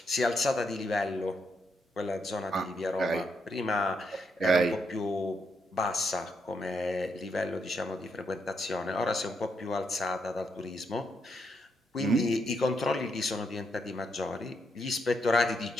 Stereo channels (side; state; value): both; normal; correlation 0.79